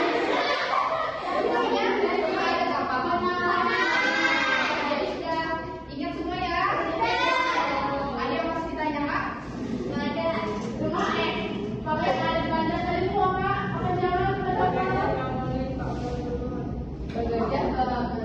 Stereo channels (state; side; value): identical; both; correlation 1.00